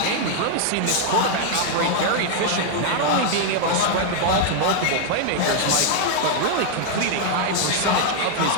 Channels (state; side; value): different; both; correlation 0.00